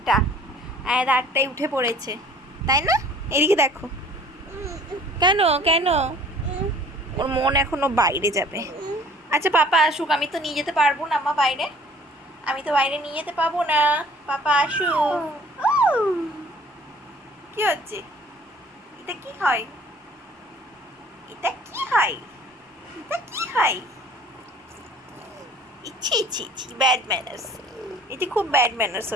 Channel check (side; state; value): both; normal; correlation 0.52